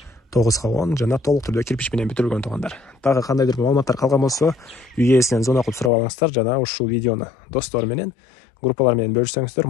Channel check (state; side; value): drops out; right; at 5.9 s